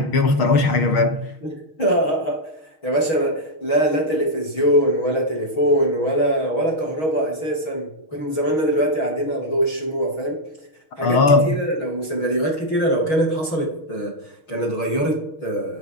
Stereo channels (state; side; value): late; right; 6.3 ms